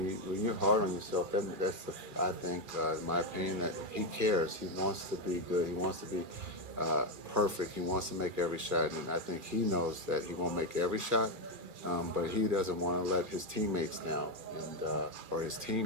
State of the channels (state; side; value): late; left; 2.4 ms